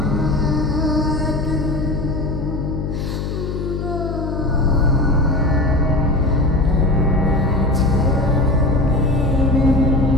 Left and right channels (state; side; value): noise; left; hum, 4 dB below the sound